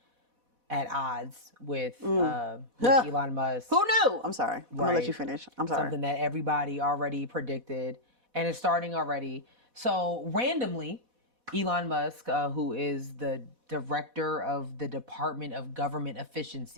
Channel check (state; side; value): late; left; 4.1 ms